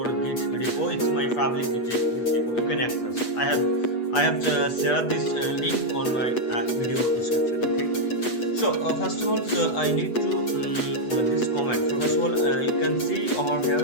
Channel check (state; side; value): late; right; 8.2 ms